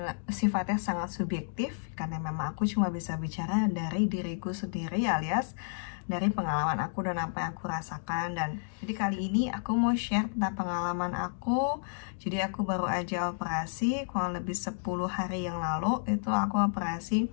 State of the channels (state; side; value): silent; right; digital silence